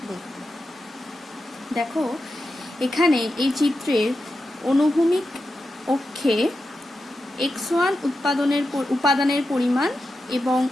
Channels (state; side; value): normal; both; correlation 0.89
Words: দেখব। দেখো, এখানে এই চিত্রের অনুভূমিক অক্ষে x1 উপাদানের পরিমাণ এবং